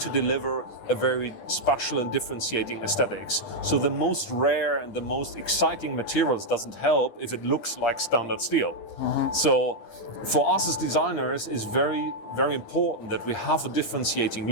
to deliver a very special and differentiating aesthetics. So the most rare and the most exciting materials doesn't help if it looks like standard steel. Mm-hmm. So for us as designers, it's very, very important that we have a differentiating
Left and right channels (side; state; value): right; late; 9.9 ms